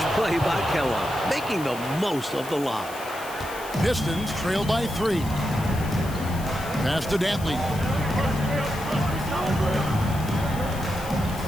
play by Kellogg, making the most of the lob. Pistons trail by 3. Pass to Dantley.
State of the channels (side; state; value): left; noise; hiss, 15 dB below the sound